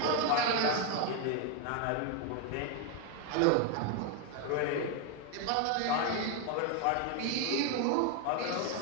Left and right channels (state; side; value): different; both; correlation 0.01